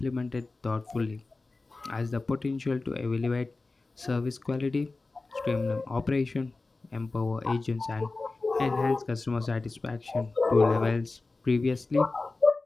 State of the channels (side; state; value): right; quieter; 3.5 dB